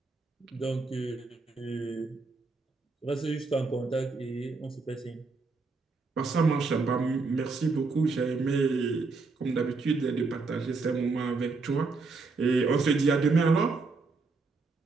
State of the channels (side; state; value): left; quieter; 4.1 dB